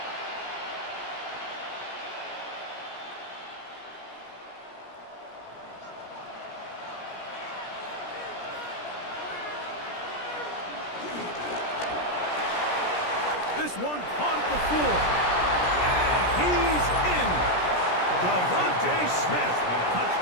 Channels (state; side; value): late; right; 17 ms